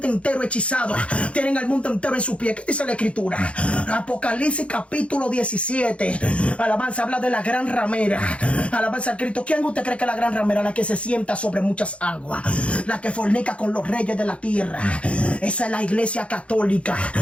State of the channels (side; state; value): right; late; 0.061 ms